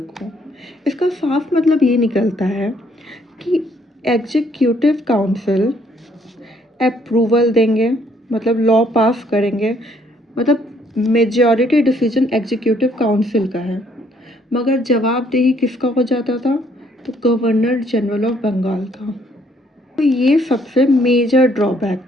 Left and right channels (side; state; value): both; normal; correlation 0.67